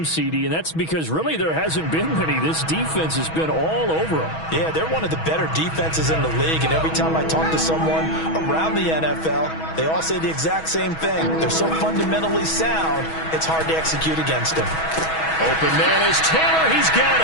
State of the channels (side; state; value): right; late; 6.2 ms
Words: CD, and that's because really there hasn't been many. This defense has been all over them. Yeah, they're one of the better defenses in the league, and every time I talk to someone around the NFL, they all say the exact same thing. They're so fundamentally sound, it's hard to execute against them. Open man is Taylor. He's got